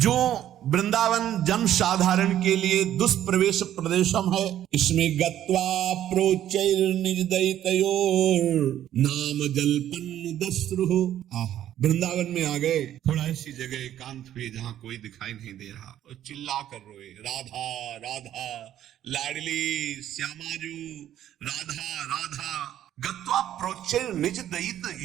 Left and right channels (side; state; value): left; quieter; 11.6 dB